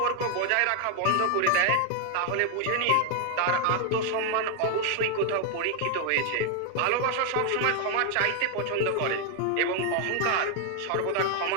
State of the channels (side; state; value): both; different; correlation 0.01